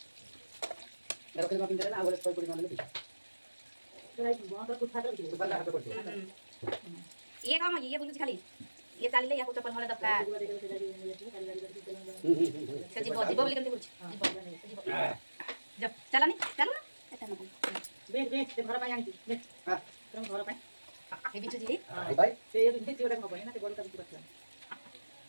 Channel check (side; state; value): both; inverted; correlation -1.00